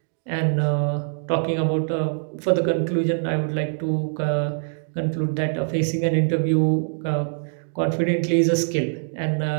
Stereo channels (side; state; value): left; silent; digital silence